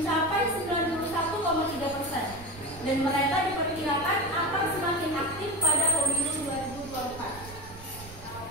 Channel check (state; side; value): noise; right; rumble, 17 dB below the sound